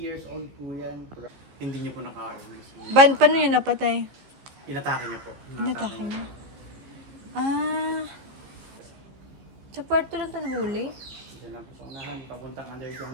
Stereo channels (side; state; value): left; late; 15 ms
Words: old po yan. Hindi niyo po nakain. Paano yun napatay? Inatake niyo po. Inatake niya? Ah. Sa Puerto lang ito nahuli? Diyan lang po sa unahan, papuntang